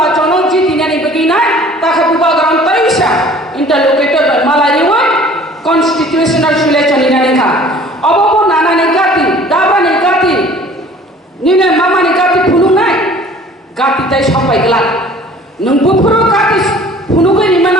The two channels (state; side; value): normal; both; correlation 0.50